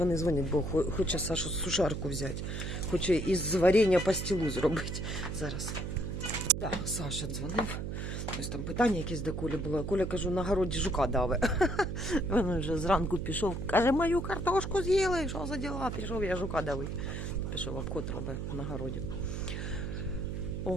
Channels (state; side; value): noise; right; hum, 4 dB below the sound